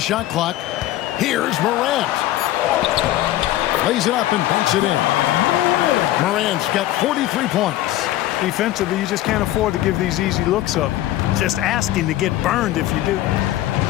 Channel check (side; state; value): right; quieter; 14.5 dB